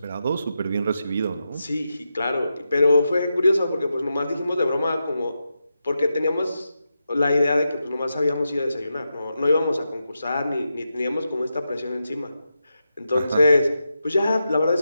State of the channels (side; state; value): both; inverted; correlation -0.88